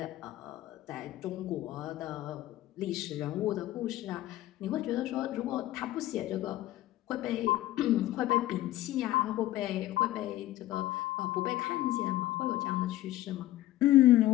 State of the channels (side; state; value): right; quieter; 15.2 dB